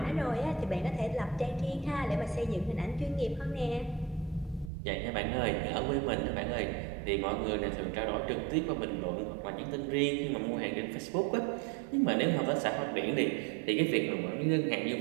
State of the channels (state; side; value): drops out; left; at 4.7 s